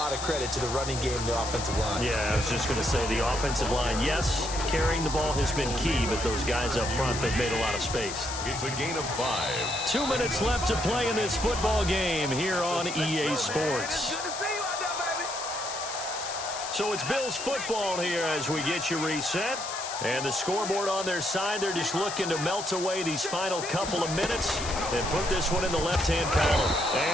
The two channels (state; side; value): noise; left; hiss, 7 dB below the sound